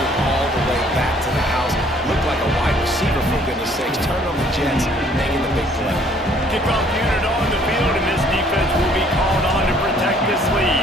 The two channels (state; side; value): normal; both; correlation 0.60